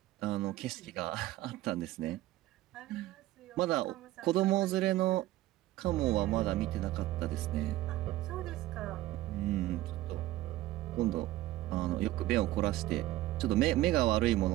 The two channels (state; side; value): quieter; left; 15.8 dB